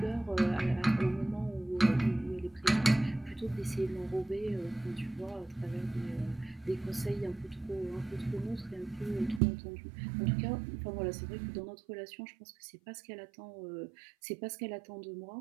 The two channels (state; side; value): drops out; left; at 9.4 s